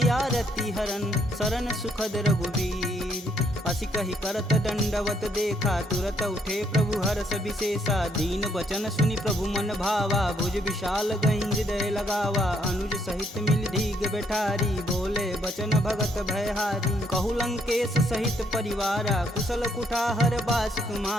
आरती हरन शरण सुखद रघुवीर असी कही करत दंडवत देखा तुरत उठे प्रभु हरस विशेषा दीन बचन सुनि प्रभु मन भावा भुज विशाल गही हृदय लगावा अनुज सहित मिल धीग बैठारी बोले बचन भगत भयहारी कहु लंकेश सहित परिवारा कुशल कुठाहर बास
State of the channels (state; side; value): normal; both; correlation 0.71